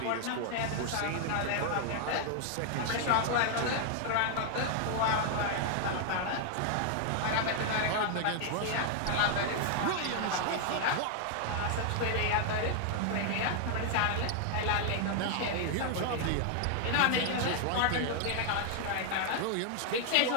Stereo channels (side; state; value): both; different; correlation 0.00